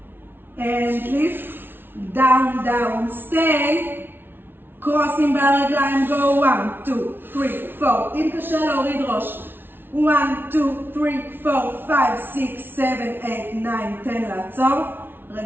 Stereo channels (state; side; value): late; left; 0.10 ms